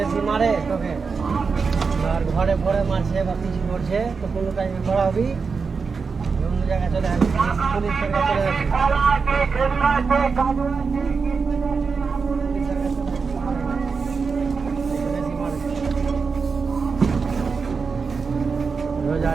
মারে তোকে আর ঘরে ভরে মারছে বা কিছু করছে তো কোনো টাইমে পড়াবি, অন্য জায়গায় চলে আসবি, পুলিশের কাছে চলে আসবি। রোজ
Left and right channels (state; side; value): quieter; left; 5.1 dB